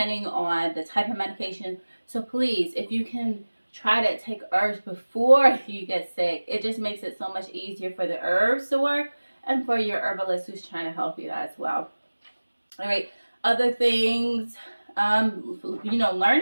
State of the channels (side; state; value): both; inverted; correlation -1.00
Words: on the type of medication. So please, if you can try to take herbs before you get sick, it just makes it so much easier for the herbs to work and for your herbalist who's trying to help you as well. All right, other things, learn